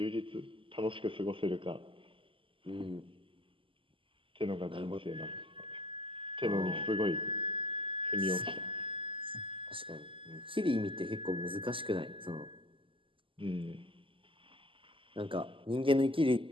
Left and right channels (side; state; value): left; late; 0.25 ms